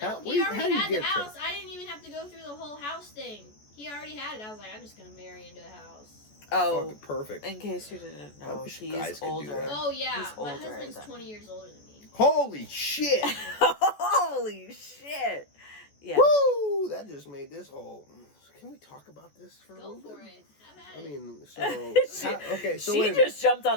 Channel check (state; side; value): late; right; 14 ms